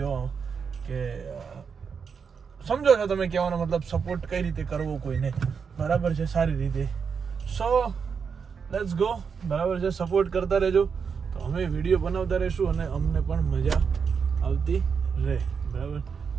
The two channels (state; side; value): quieter; left; 6.1 dB